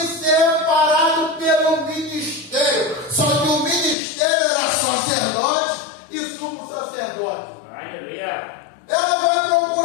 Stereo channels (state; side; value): drops out; right; at 4.0 s